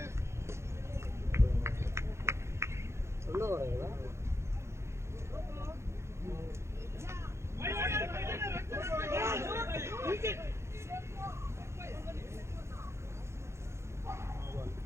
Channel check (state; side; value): late; left; 0.13 ms